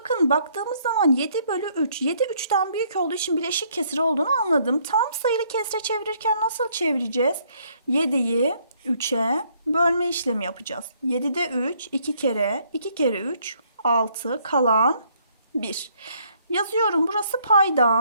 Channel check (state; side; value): inverted; both; correlation -0.67